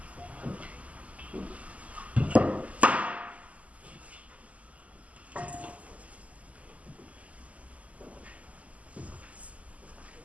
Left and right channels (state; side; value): late; left; 0.070 ms